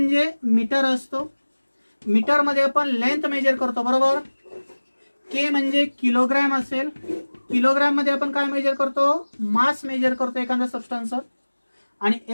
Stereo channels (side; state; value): both; inverted; correlation -1.00